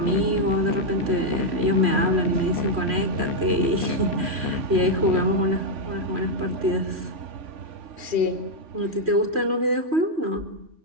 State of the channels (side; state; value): left; late; 3.1 ms